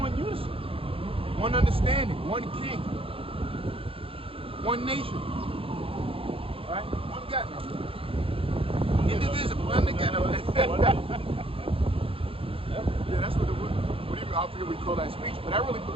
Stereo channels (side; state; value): left; late; 0.27 ms